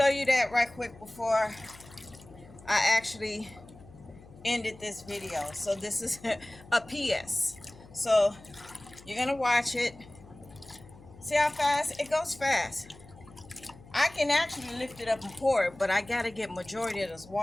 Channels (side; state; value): left; noise; hum, 21 dB below the sound